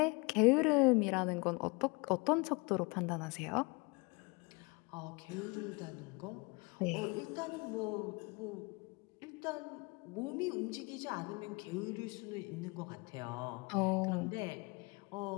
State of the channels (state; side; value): quieter; right; 28.5 dB